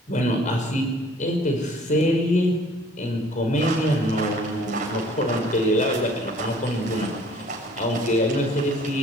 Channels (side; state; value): both; normal; correlation 0.55